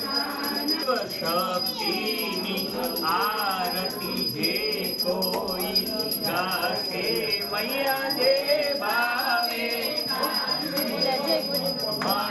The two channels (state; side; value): identical; both; correlation 1.00